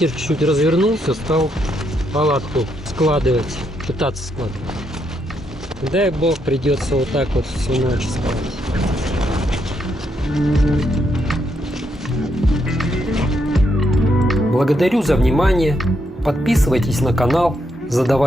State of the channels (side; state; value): both; normal; correlation 0.78